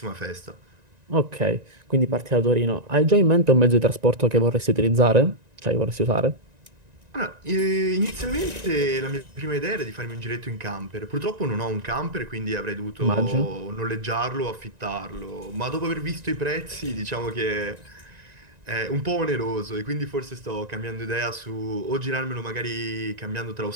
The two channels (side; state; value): left; late; 1.9 ms